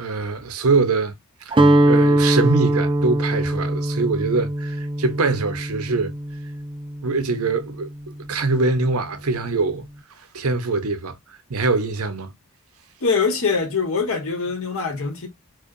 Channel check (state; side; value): normal; both; correlation 0.35